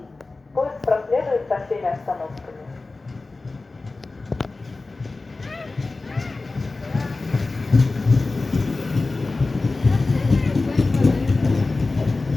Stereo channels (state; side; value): quieter; right; 3.5 dB